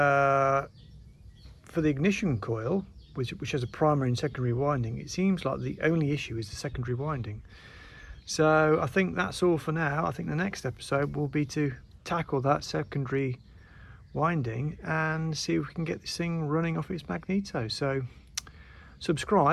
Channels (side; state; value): both; identical; correlation 1.00